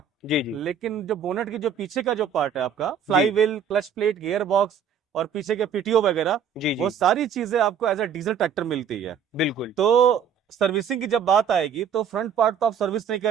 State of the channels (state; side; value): quieter; left; 7.2 dB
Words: जी जी लेकिन जो बोनट की जो पीछे का जो पार्ट है आपका, जी flywheel, clutch plate, gearbox, और पीछे के पीटीओ वगैरह, जी वो जी सारी चीजें आपको एज अ डीजल ट्रैक्टर मिलती है। बिल्कुल। तो सर्विसिंग की जब बात आएगी तो फ्रंट पार्ट तो आप सर्विस नहीं